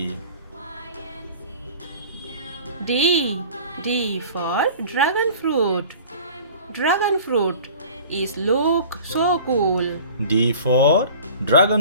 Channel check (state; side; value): inverted; both; correlation -0.44